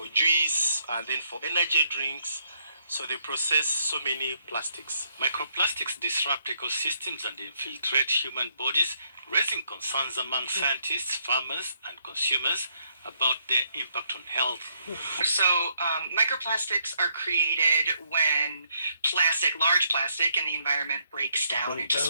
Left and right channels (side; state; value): both; inverted; correlation -0.72